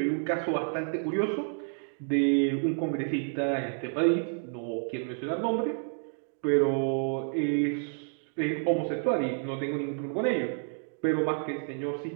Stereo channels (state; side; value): silent; left; 58 dB below the other